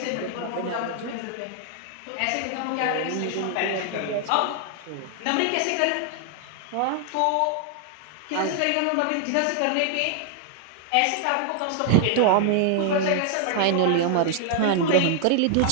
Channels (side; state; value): both; different; correlation 0.00